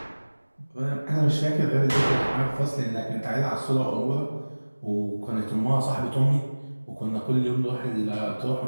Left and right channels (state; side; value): inverted; both; correlation -1.00